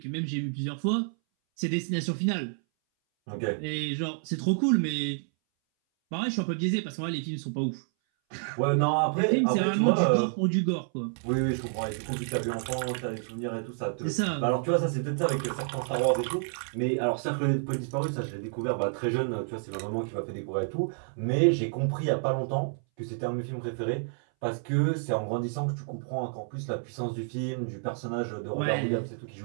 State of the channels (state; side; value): silent; left; 58 dB below the other